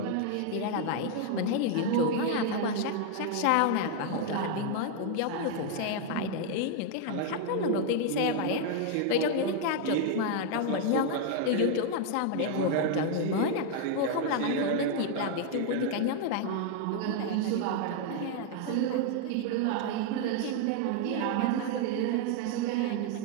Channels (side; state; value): both; different; correlation 0.00